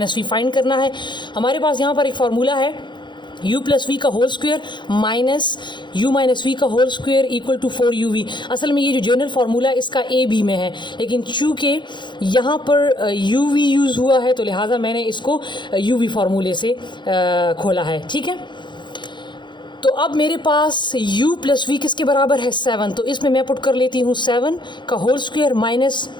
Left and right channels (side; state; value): right; late; 0.22 ms